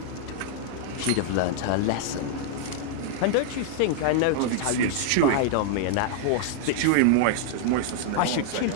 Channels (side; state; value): both; different; correlation -0.01